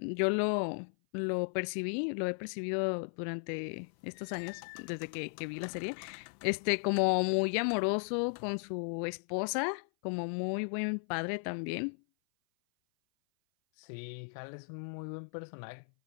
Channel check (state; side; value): silent; right; 54 dB below the other